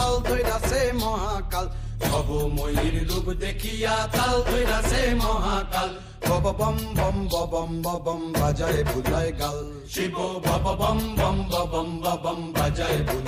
ধইরাছে মহাকাল, ভবময়ীর রূপ দেখিয়া তাল ধইরাছে মহাকাল। বব বম বম বম বম বাজায় বুলায় গাল, শিব বব বম বম বম বম বাজায়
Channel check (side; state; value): both; identical; correlation 1.00